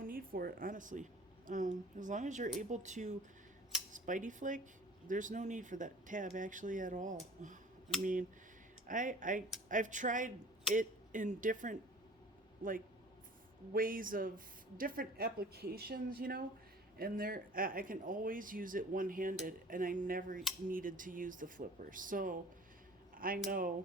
need for it, honestly. As long as you're able to spidey flick, there's no need for that tab actually at all. I mean, I've tried it in different like ways of different applications, you know, and there I can always use it one-handed, and I never needed to use the flipper. So I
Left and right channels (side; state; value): both; normal; correlation 0.46